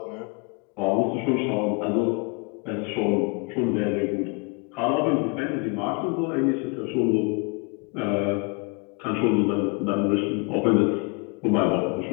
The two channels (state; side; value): quieter; right; 32.7 dB